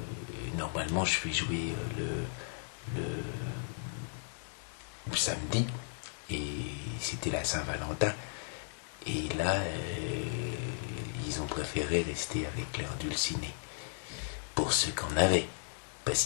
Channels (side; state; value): right; silent; digital silence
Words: normalement je vais jouer le samedi et c'était la Saint-Valentin, et là ils ont préféré rester avec leur dulciné pour ceux qu'on avait, parce